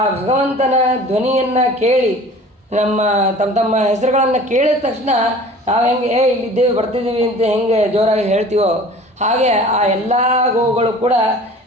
ಭಗವಂತನ ಧ್ವನಿಯನ್ನು ಕೇಳಿ ತಮ್ಮ ಹೆಸರುಗಳನ್ನು ಕೇಳಿದ ತಕ್ಷಣ ನಾವು ಹೆಂಗೆ ಇಲ್ಲಿದ್ದೇವೆ ಬರ್ತಿದ್ದೀವಿ ಅಂತ ಹೆಂಗೆ ಜೋರಾಗಿ ಹೇಳ್ತೀವೋ ಹಾಗೆ ಆ ಎಲ್ಲ ಗೋವುಗಳು ಕೂಡ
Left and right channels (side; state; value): both; normal; correlation 0.44